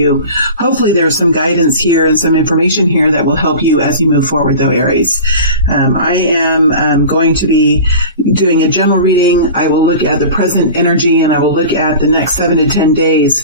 Hopefully there's some guidance here and some information here that will help you as you move forward, though, Aries. I am going to be doing a general reading. I will look at the present energy, and I will look at the next 7 to 10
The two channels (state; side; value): inverted; both; correlation -0.36